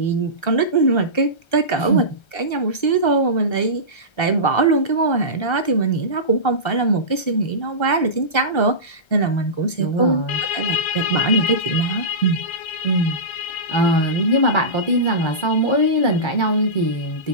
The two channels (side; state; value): right; late; 1.3 ms